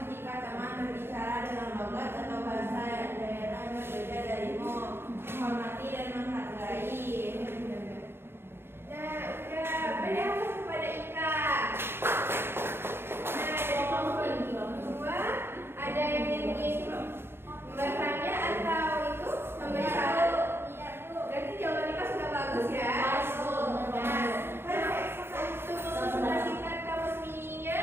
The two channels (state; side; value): late; left; 0.11 ms